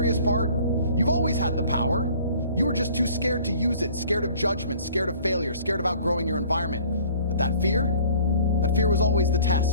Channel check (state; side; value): inverted; both; correlation -0.52